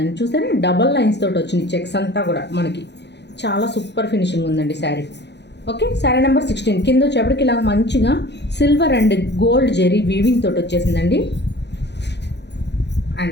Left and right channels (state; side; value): late; right; 0.50 ms